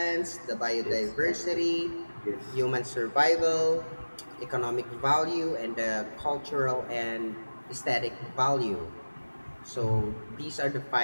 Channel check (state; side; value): inverted; both; correlation -1.00